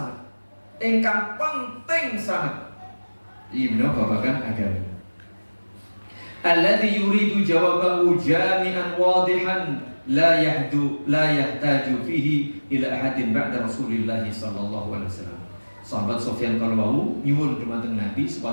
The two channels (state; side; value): inverted; both; correlation -1.00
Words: ingkang penting sanget. Ibnu babakan agama. Alladhi yuridu jawabahu jami'an wadihan la yahtaju fihi ila ahadin ba'da Rasulillah sallallahu alaihi wasallam. Sahabat Sufyan kalwau nyuwun dumateng Nabi